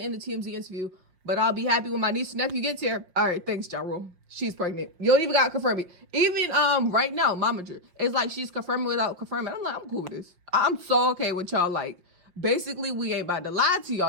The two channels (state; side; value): late; left; 5.6 ms